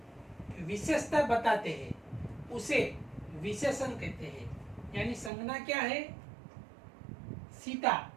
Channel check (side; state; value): left; drops out; at 5.3 s